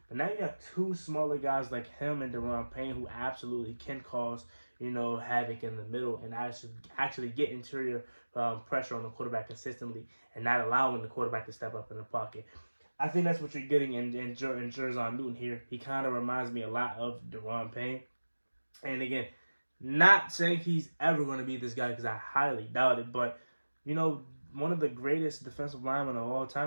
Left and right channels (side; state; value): both; inverted; correlation -1.00